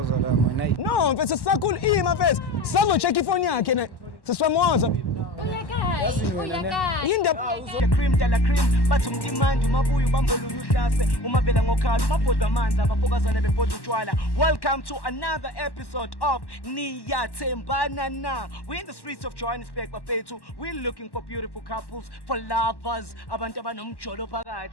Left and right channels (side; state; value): right; late; 1.1 ms